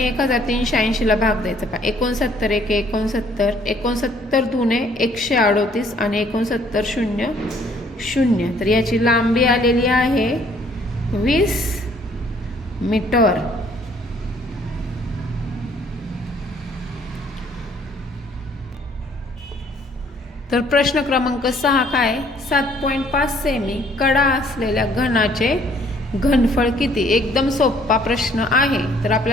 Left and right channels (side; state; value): both; normal; correlation 0.61